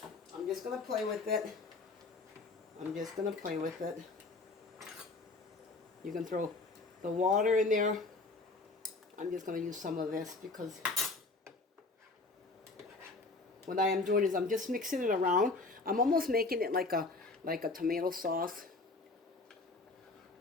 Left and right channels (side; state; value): right; quieter; 3.4 dB